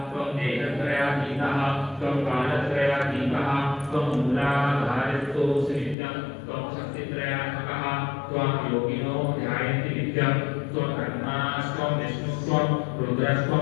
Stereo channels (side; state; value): right; drops out; at 6.0 s